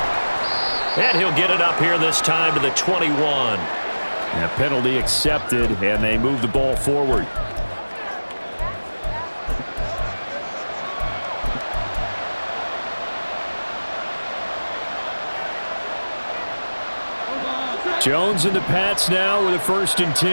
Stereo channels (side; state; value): both; inverted; correlation -1.00